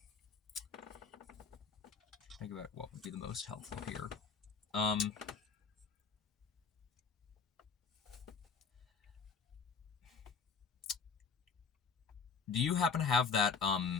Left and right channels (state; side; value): quieter; right; 5.4 dB